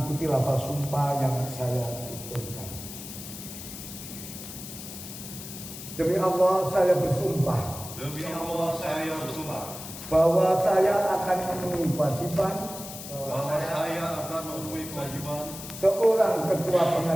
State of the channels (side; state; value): left; noise; hiss, 11 dB below the sound